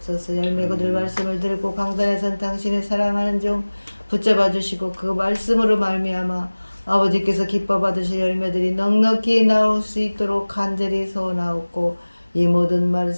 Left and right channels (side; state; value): both; inverted; correlation -1.00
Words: 열매 거둘 말씀을 들고 강단에 선 당신을 사랑하는 종 붙잡아 주시고 그 말씀으로 말미암아 아버지께서 기뻐 받으실 열매들이 넉넉히 나올 수 있도록 간절히 소원하옵고 이 모든